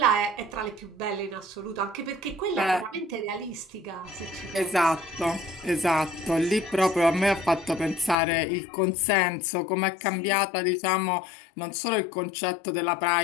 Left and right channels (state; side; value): drops out; right; at 8.2 s